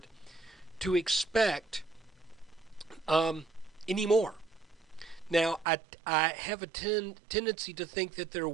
to expect anymore. Now, I have a tendency to think that there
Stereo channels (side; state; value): left; drops out; at 5.7 s